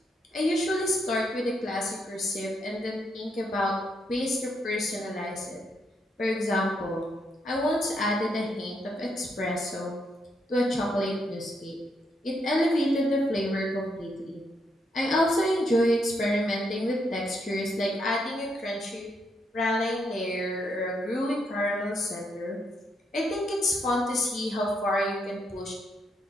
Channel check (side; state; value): both; normal; correlation 0.77